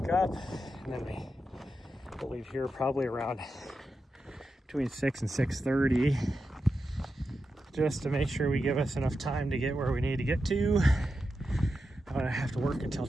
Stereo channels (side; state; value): both; normal; correlation 0.88